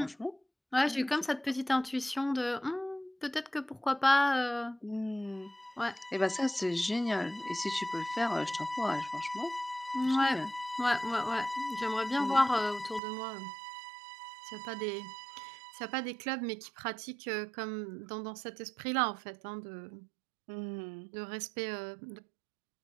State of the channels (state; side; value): drops out; left; at 13.0 s